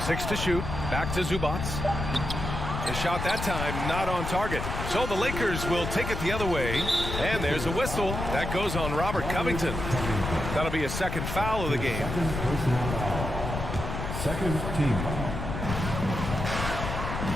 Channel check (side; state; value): left; noise; rumble, 4 dB below the sound